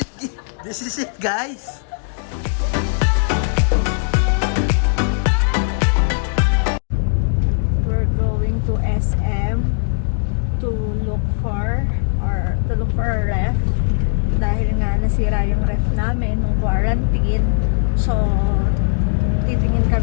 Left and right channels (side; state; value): right; silent; digital silence